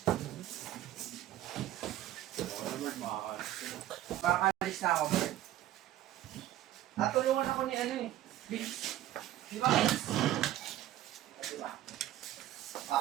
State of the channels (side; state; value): left; quieter; 13.4 dB